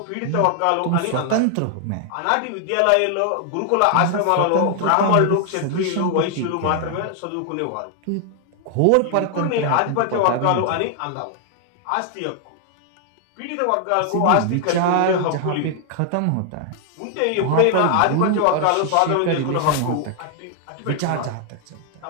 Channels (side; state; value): both; different; correlation 0.00